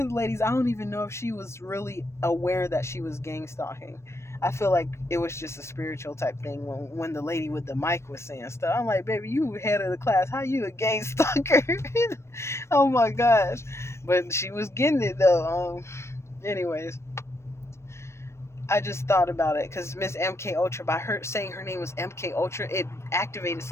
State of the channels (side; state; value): right; late; 0.13 ms